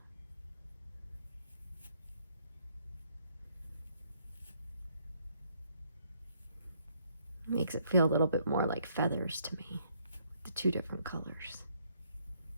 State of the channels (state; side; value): inverted; both; correlation -0.69